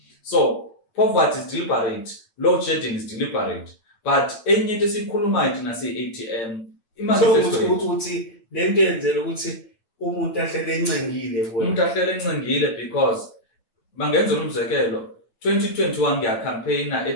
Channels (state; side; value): late; right; 8.8 ms